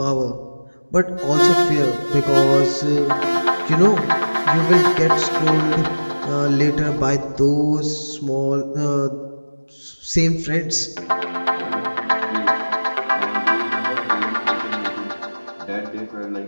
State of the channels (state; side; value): inverted; both; correlation -1.00